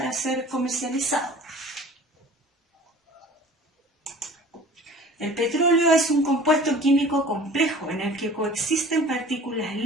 ser comercializado. El petróleo es un compuesto químico complejo en el que coexisten partículas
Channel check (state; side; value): normal; both; correlation 0.44